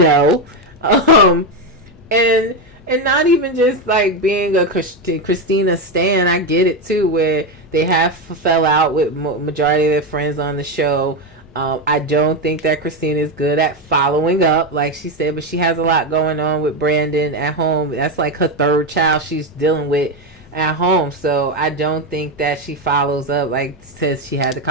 And not even just like being a Kristina stan. I get it too, where they have fell out with majority of their friends on the show. I don't think that Kristina is good at following up, like she said, but she has a lot going on with Brandon at home. That's like her third child she's dealing with at home. So I don't think that she follows up. Like, says she had the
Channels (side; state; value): both; normal; correlation 0.11